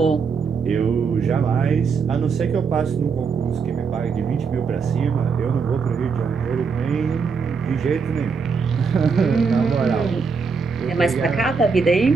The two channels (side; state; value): left; quieter; 5.4 dB